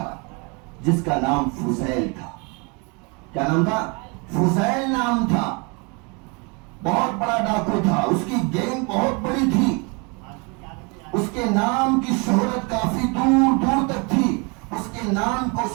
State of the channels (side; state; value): left; quieter; 31.3 dB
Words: جس کا نام فضیل تھا۔ کیا نام تھا؟ فضیل نام تھا۔ بہت بڑا ڈاکو تھا، اس کی گینگ بہت بڑی تھی، اس کے نام کی شہرت کافی دور دور تک تھی۔ اس کے نام کو